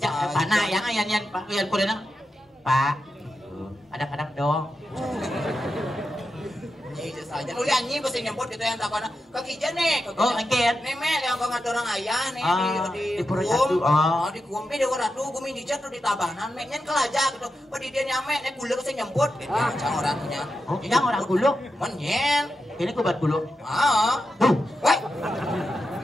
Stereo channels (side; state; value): both; normal; correlation 0.88